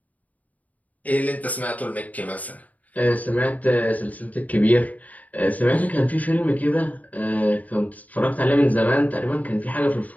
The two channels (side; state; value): right; late; 0.074 ms